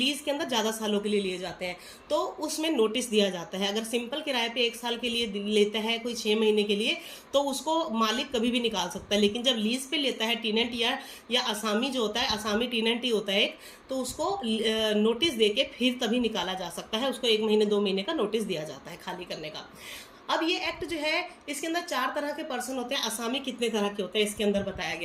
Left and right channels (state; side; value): identical; both; correlation 1.00